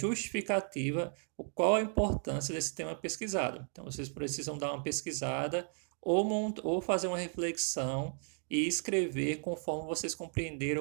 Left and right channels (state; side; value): silent; left; 55 dB below the other